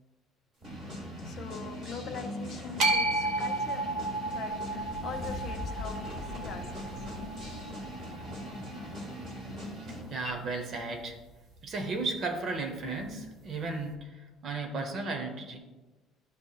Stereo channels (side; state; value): both; normal; correlation 0.36